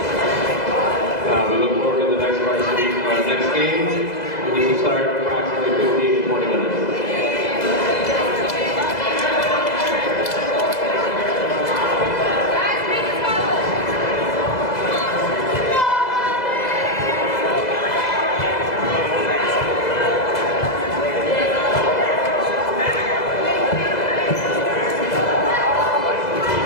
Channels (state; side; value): late; right; 2.0 ms